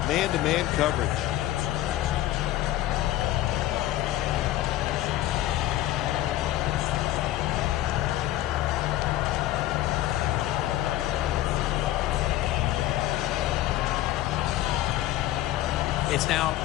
man-to-man coverage. It's now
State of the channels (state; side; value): quieter; right; 14.4 dB